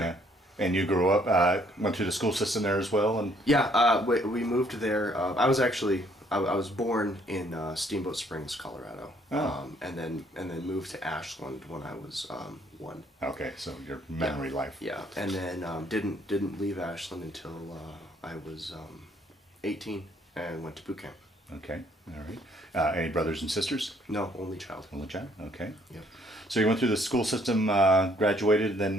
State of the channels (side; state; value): both; normal; correlation 0.64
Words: And you grew up, went through the school system there as well, and Yeah, we moved there. I was born in Steamboat Springs, Colorado, and then moved to Ashland when I was 1. okay, so your memory life. Yeah, and then didn't leave Ashland until I was 18 and went to boot camp. Okay, all right. Any brothers and sisters? No, only child. Only child. Okay. Yeah. So you went through the school system, graduated,